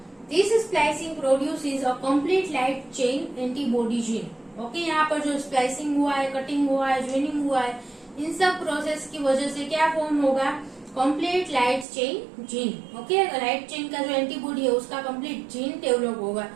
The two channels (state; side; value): drops out; left; at 11.9 s